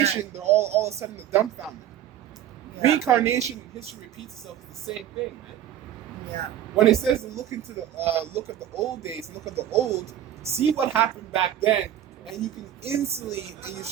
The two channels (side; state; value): left; quieter; 11.2 dB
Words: they're all of a sudden dumbfounded. Yeah. Reincarnation and history repeats itself is the same thing, man. Yeah. When it says to look into the look at the old days, look at the old, see what happened back then, and you can instantly, and you